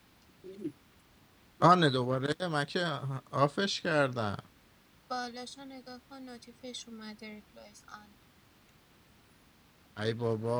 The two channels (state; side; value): identical; both; correlation 1.00